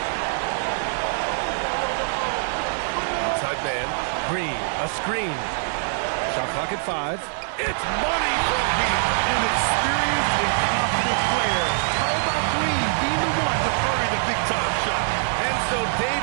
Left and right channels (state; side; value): silent; left; digital silence